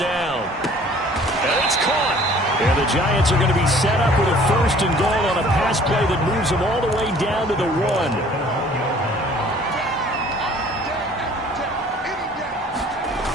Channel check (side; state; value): both; normal; correlation 0.53